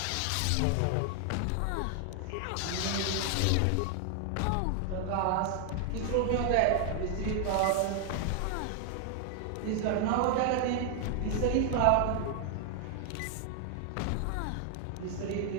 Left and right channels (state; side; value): different; both; correlation 0.00